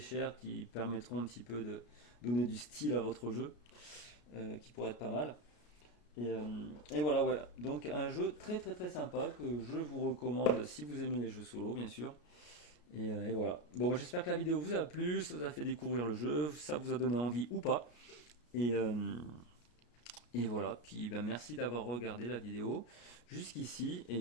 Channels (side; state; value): right; late; 33 ms